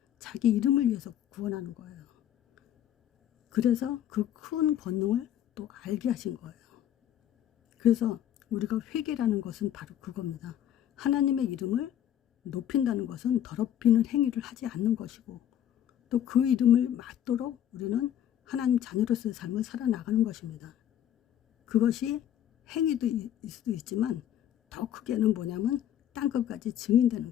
자기 이름을 위해서 구원하는 거예요. 그래서 그 큰 권능을 또 알게 하신 거예요. 그래서 우리가 회개라는 것은 바로 그겁니다. 하나님의 이름을 높인다는 것은 더럽히는 행위를 하지 않는 것이고, 또 그 이름을 맞도록 우리는 하나님 자녀로서의 삶을 살아나가는 것입니다. 그것이 행위도 수도 있지만 더 크게는 뭐냐면 땅끝까지 증인되는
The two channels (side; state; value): right; quieter; 10.8 dB